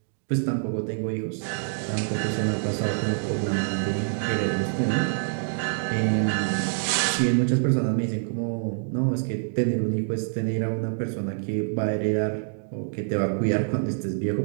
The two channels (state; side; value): silent; left; digital silence